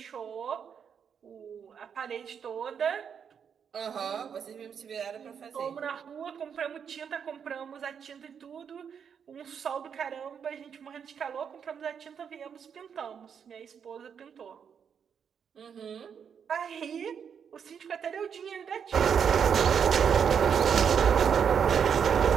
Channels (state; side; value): quieter; left; 7.4 dB